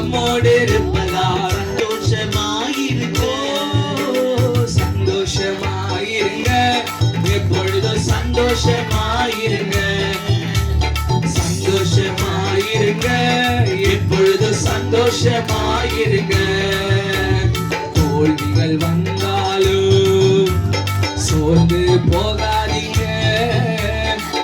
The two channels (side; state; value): both; identical; correlation 1.00